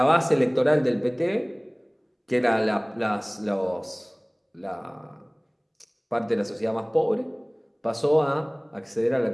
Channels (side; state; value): both; identical; correlation 1.00